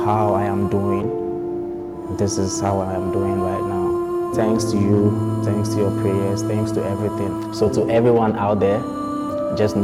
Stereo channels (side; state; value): both; identical; correlation 1.00